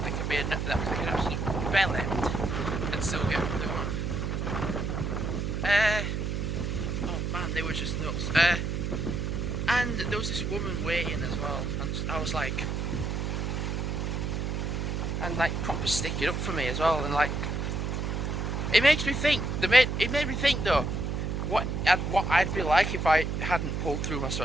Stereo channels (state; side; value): noise; right; hum, 1 dB below the sound